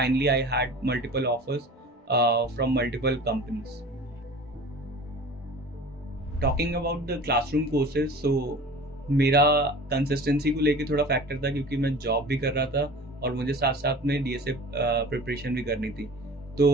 I had multiple offers from multiple companies. Talking about the classroom courses, so मेरा consistency को लेके थोड़ा फैक्टर था, क्योंकि मैं जॉब भी कर रहा था और मुझे साथ साथ में डीएसए प्रिपरेशन भी करनी थी। तो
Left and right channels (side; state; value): both; normal; correlation 0.40